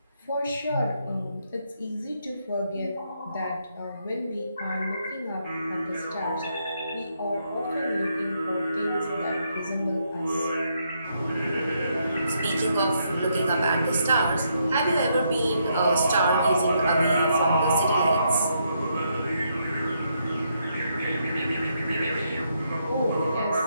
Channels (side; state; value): both; inverted; correlation -0.77